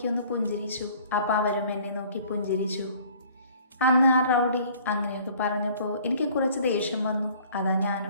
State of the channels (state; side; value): inverted; both; correlation -0.53